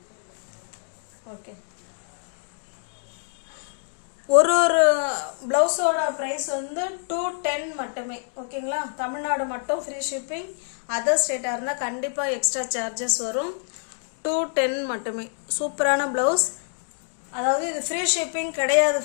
ஓகே, ஒரு பிளவுஸோட ப்ரைஸ் வந்து 210 மட்டுமே. ஓகேங்களா, தமிழ்நாடு மட்டும் ஃப்ரீ ஷிப்பிங். அதர் ஸ்டேட்டாக இருந்தால் கண்டிப்பாக எக்ஸ்ட்ரா சார்ஜஸ் வரும். 210 மட்டுமே. சூப்பரான ப்ளவுஸ். அதாவது இது ஃப்ரீ ஷிப்பிங் கிடையாது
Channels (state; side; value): silent; right; digital silence